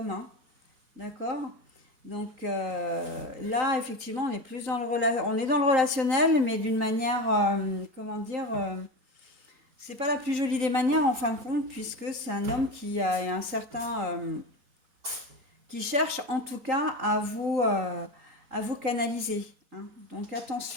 hein. D'accord? Là, effectivement, on est plus on est dans le relationnel, mais d'une manière, comment dire, c'est pas la plus jolie des manières en fin de compte, puisque c'est un homme qui a un certain, qui cherche en tout cas à vous canaliser, hein. Donc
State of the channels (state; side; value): late; left; 3.9 ms